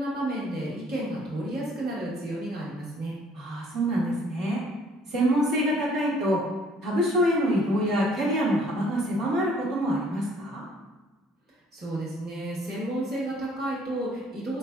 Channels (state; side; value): normal; both; correlation 0.60